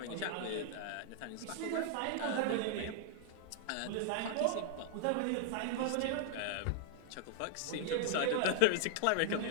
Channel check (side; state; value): both; different; correlation 0.00